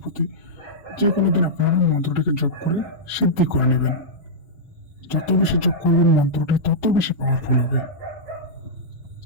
যে কোনো দিন আপনারা মন্ত্রটিকে জপ করে সিদ্ধি করে নেবেন। যত বেশি জপ করবেন মন্ত্রটি তত বেশি পাওয়ারফুল হবে।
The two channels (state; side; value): normal; both; correlation -0.11